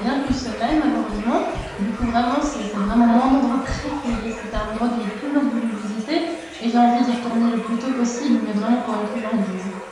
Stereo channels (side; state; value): both; identical; correlation 1.00